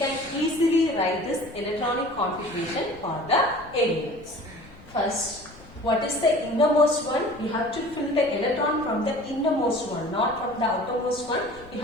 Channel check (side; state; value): left; noise; rumble, 22 dB below the sound